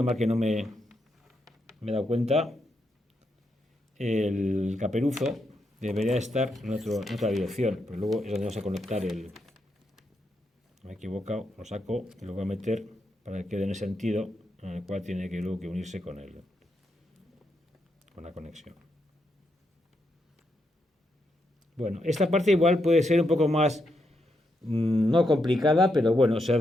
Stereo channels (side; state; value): both; normal; correlation 0.82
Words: mal que no me he dado cuenta, el caperuzo debería estar en otra dirección, pero luego es donde vamos a conectar me he equivocado, lo saco y lo voy a meter para que quede en el sentido en el cual tiene que luego unirse con la conexión. Bueno, esta parte igual puede ser un poco más, no complicada, pero bueno, se